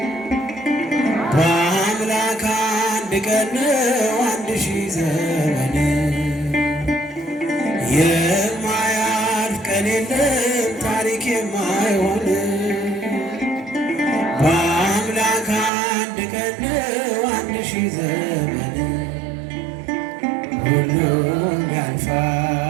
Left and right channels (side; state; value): left; drops out; at 15.7 s